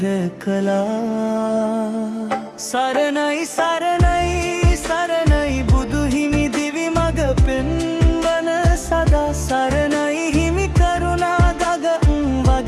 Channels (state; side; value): identical; both; correlation 1.00